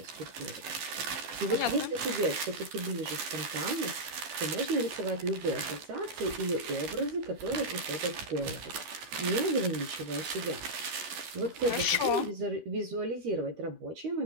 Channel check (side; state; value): left; late; 13 ms